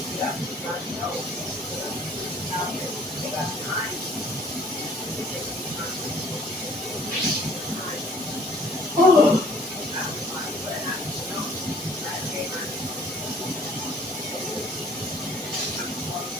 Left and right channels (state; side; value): normal; both; correlation 0.55